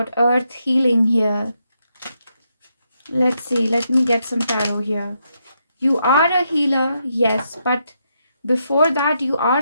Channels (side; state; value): both; inverted; correlation -0.80